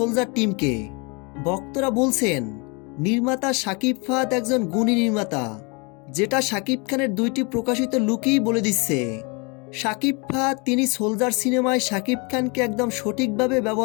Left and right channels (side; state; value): right; quieter; 31.0 dB